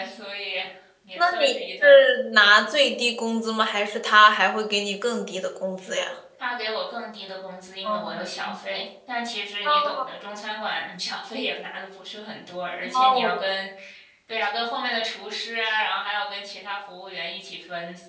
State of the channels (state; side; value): identical; both; correlation 1.00